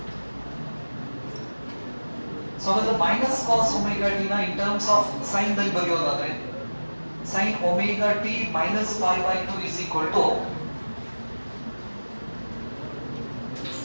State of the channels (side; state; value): both; inverted; correlation -1.00